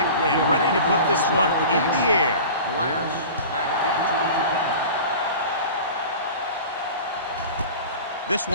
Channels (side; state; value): both; inverted; correlation -0.37